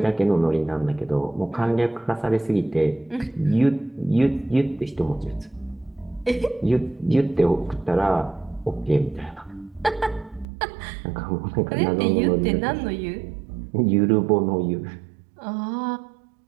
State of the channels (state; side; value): drops out; left; at 10.5 s